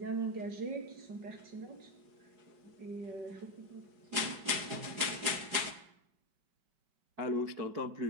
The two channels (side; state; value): left; late; 4.9 ms